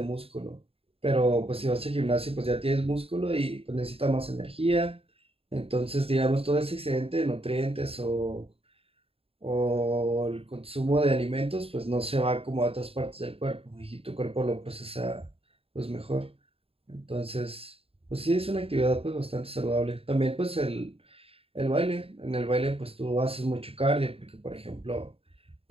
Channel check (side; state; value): left; late; 0.28 ms